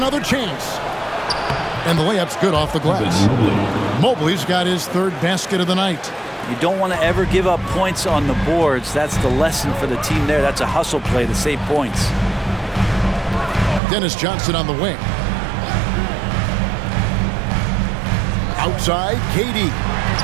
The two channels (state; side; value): drops out; left; at 13.8 s